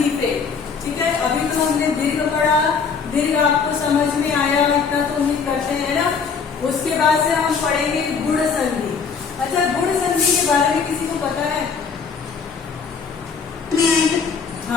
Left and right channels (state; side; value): quieter; right; 5.7 dB